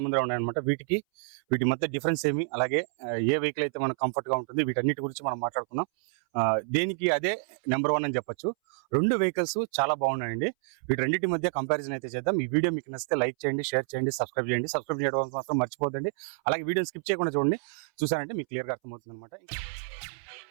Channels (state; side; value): silent; left; 59 dB below the other